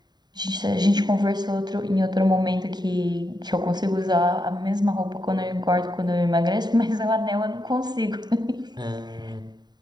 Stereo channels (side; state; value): left; late; 0.20 ms